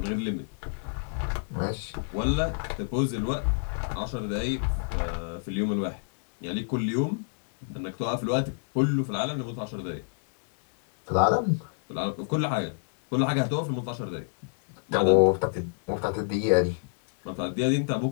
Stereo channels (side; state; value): right; silent; digital silence